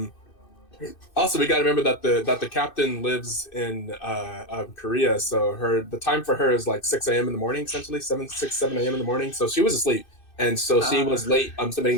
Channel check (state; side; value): late; right; 2.6 ms